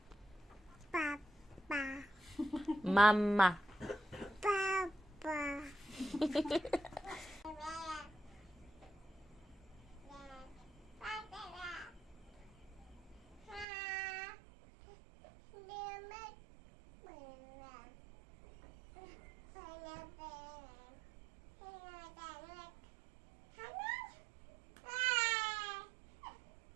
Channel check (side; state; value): left; drops out; at 13.7 s